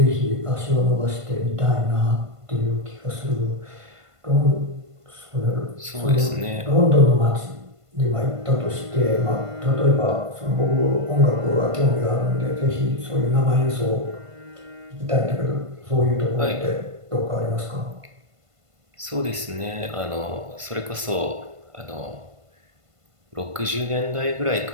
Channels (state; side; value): late; left; 1.5 ms